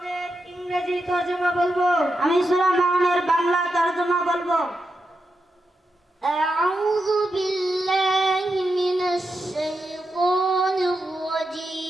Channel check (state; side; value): normal; both; correlation 0.87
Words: ইংরেজি তরজমা বলবো। আমি সূরা মাউনের বাংলা তরজমা বলবো। আউযু বিল্লাহি মিনাশ শাইতানির